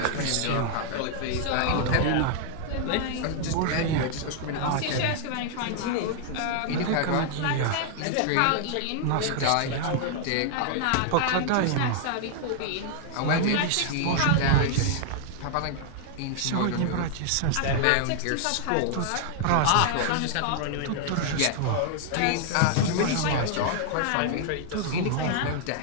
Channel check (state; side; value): different; both; correlation 0.00